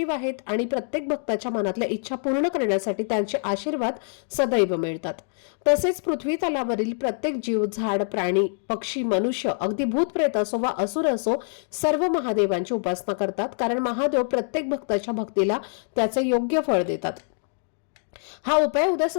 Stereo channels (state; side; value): silent; right; digital silence